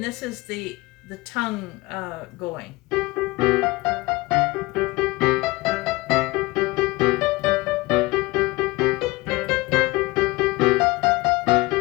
this is the tongue going.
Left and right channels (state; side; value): quieter; right; 22.0 dB